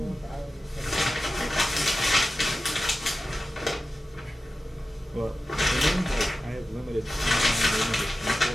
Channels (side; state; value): both; normal; correlation 0.93